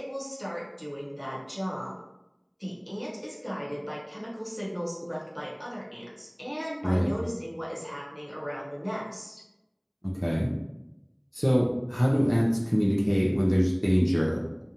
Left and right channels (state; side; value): identical; both; correlation 1.00